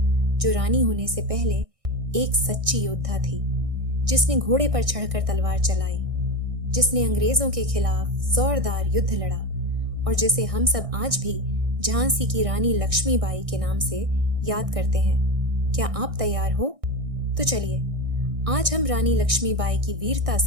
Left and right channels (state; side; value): late; left; 1.6 ms